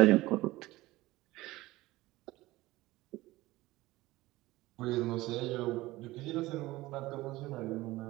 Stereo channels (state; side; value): quieter; left; 18.6 dB